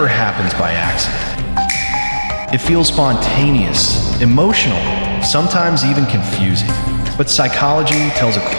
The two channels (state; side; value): inverted; both; correlation -1.00